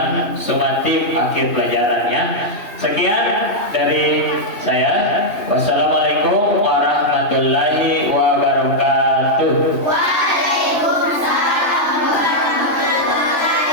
sumatif akhir pelajarannya. Sekian dari saya. Wassalamualaikum warahmatullahi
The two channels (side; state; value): right; late; 3.0 ms